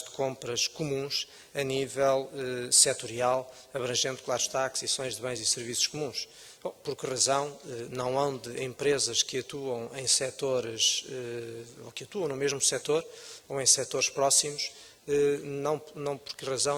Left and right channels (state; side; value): identical; both; correlation 1.00